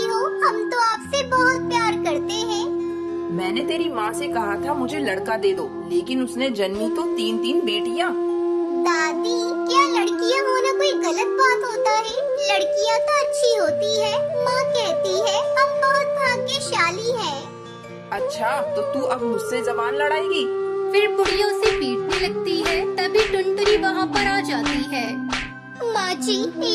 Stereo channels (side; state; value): both; identical; correlation 1.00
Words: हो? हम तो आपसे बहुत प्यार करते हैं। मैंने तेरी माँ से कहा था मुझे लड़का दे दो, लेकिन उसने जन्मी तो 3-3 बेटियाँ। दादी, क्या लड़कियाँ होना कोई गलत बात होता है? लड़कियाँ तो अच्छी होती है। माँ कहती है हम बहुत भाग्यशाली हैं। अच्छा, तो तू अब मुझसे जबान लड़ाएगी? फिर बुढ़िया उसे पीटने लगती है। तभी टुनटुनी वहाँ पर आ जाती है। माँ जी,